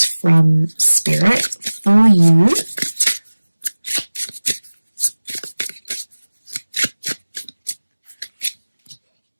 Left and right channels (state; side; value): inverted; both; correlation -1.00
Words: from Spirit for you.